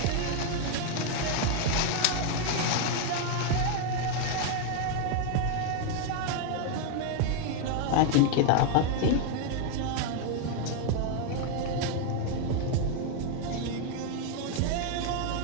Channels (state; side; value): different; both; correlation 0.00